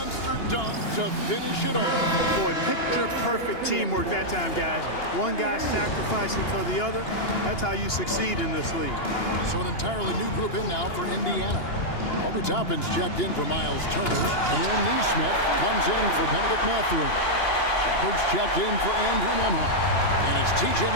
dunk to finish it off. Boy, picture-perfect teamwork that time, guys. One guy sacrificing for the other. That's how you succeed in this league. So an entirely new group in now for Indiana. Obi Toppin's checked in for Miles Turner. Aaron Neesmith comes in for Benedict Mathurin. Shepard's checked in for Andrew Nembhard. And it's T.J.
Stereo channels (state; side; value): late; right; 2.9 ms